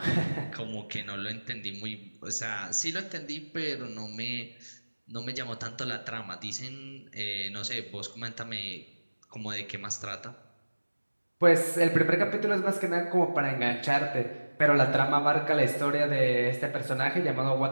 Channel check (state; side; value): inverted; both; correlation -1.00